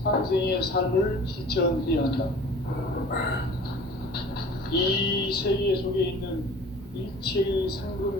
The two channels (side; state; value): both; normal; correlation 0.44